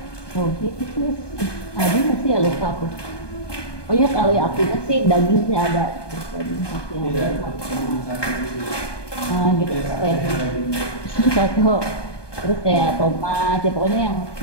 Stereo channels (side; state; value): right; late; 1.2 ms